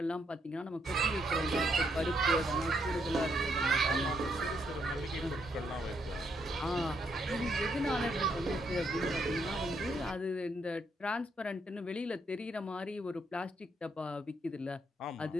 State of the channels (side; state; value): both; normal; correlation 0.75